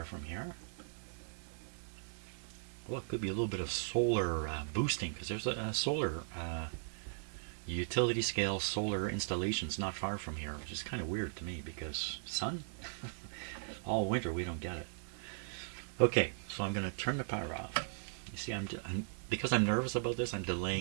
from here. Well, it could be a little bit of solar boosting, because there's a solar utility scale solar installations not far from here, which is kind of weird to me because sun? All winter we don't get it. Okay, so I'm going to turn the power off. You see, because I'm nervous about this, I'm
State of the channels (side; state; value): left; silent; 52 dB below the other